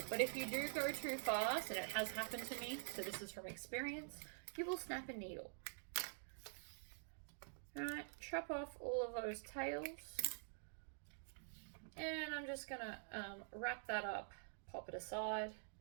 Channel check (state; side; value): silent; left; digital silence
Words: but if you do go too fast, and it has happened to me, so this is from experience, you will snap a needle. Alright, chop off all of those tails. And I'm just gonna wrap that up, pop it aside